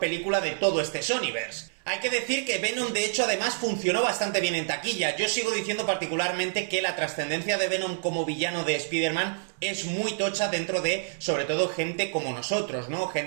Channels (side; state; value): left; silent; 59 dB below the other